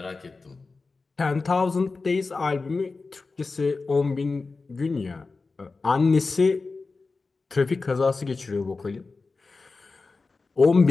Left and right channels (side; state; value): right; quieter; 4.0 dB